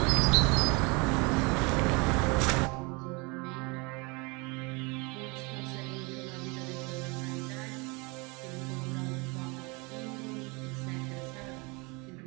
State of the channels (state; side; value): quieter; left; 28.3 dB